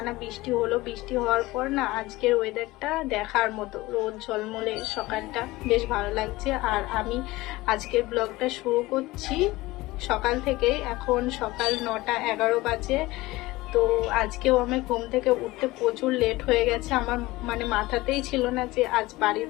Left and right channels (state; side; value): quieter; right; 19.6 dB